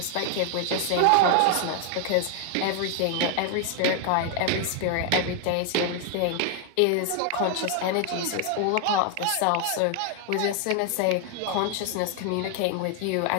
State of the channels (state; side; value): different; both; correlation 0.00